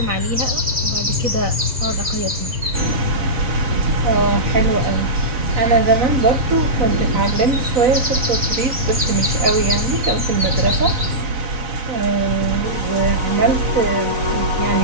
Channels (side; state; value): left; late; 4.1 ms